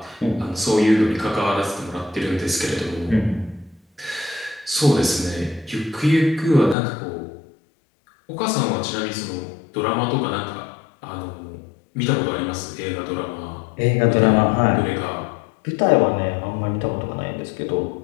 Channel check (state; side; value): drops out; right; at 6.8 s